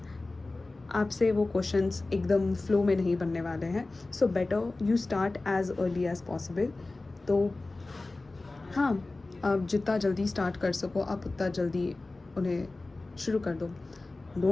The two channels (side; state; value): right; quieter; 3.2 dB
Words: आपसे वो क्वेश्चंस एकदम फ्लो में नहीं बनने वाले हैं. So better you start as early as possible. तो हाँ, आप जितना जल्दी स्टार्ट कर सको आप उतना जल्दी उन्हें शुरू कर दो.